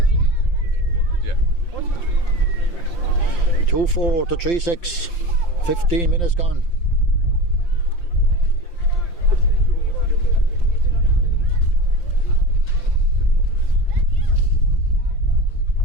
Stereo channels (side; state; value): right; late; 5.8 ms